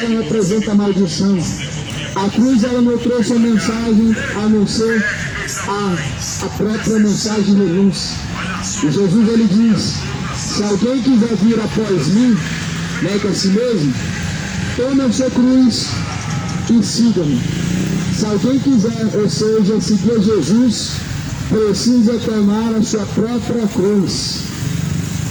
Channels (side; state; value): both; identical; correlation 1.00